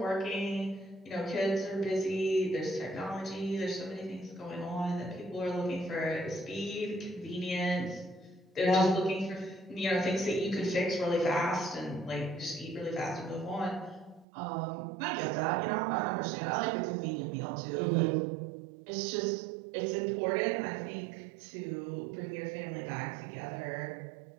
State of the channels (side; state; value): left; drops out; at 14.2 s